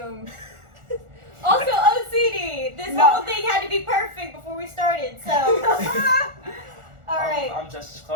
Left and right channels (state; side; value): late; left; 1.4 ms